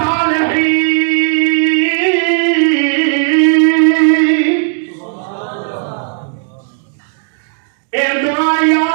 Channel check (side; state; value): left; silent; digital silence